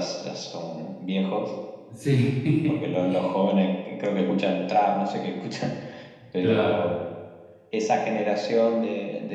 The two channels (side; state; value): both; identical; correlation 1.00